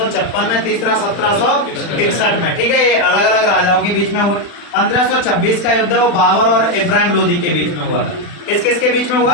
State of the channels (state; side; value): late; right; 40 ms